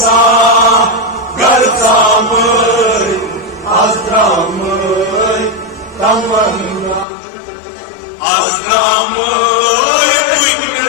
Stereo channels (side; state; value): right; drops out; at 7.1 s